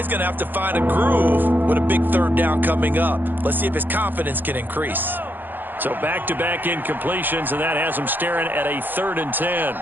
going to have to find a groove with a big 3rd down coming up. Let's see if his confidence can increase. So back-to-back incompletions, and that has him staring at a 3rd and 10.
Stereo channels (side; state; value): left; late; 0.091 ms